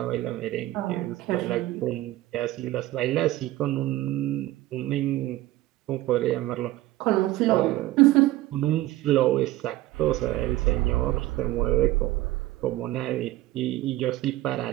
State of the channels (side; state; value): left; quieter; 16.4 dB